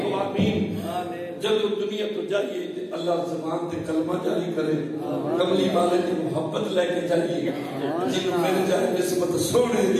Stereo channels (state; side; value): identical; both; correlation 1.00